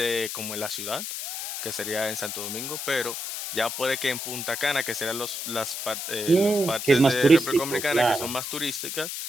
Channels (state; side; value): noise; left; hiss, 5 dB below the sound